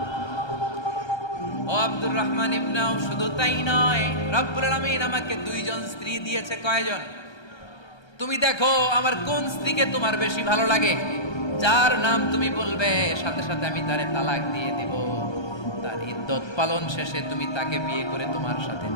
ও আব্দুর রহমান ইবনে আউফ, শুধু তাই নয়, রব্বুল আলামিন আমাকে 2 জন স্ত্রী দিয়েছে। কয়জন? তুমি দেখো আমার কোন স্ত্রীকে তোমার বেশি ভালো লাগে, যার নাম তুমি বলবে সাথে সাথে আমি তারে তালাক দিয়ে দিব। তার ইদ্দত পালন শেষে তুমি তাকে বিয়ে করে তোমার সাথে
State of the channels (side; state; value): right; late; 1.3 ms